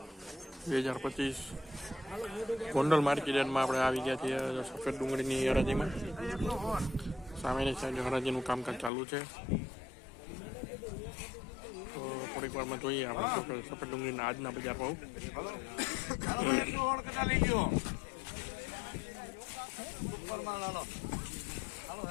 2025. ગોંડલ માર્કેટ યાર્ડમાં આપણે આવી ગયા છીએ સફેદ ડુંગળીની હરાજીમાં. સામેની સાઈડ હરાજીનું કામકાજ ચાલુ છે. તો થોડીક વારમાં જોઈએ આપણે સફેદ ડુંગળીના આજના બજાર ભાવ.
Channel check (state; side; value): drops out; right; at 8.9 s